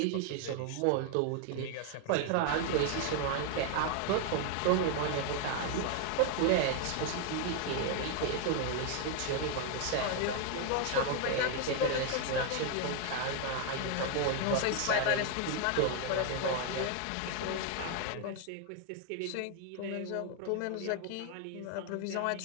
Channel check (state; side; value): different; both; correlation 0.01